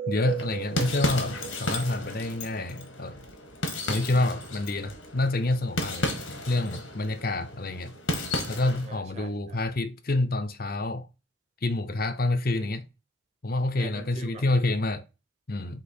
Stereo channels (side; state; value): both; normal; correlation 0.62